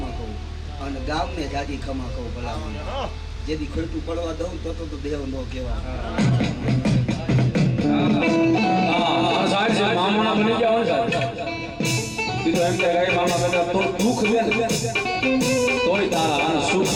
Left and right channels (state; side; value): identical; both; correlation 1.00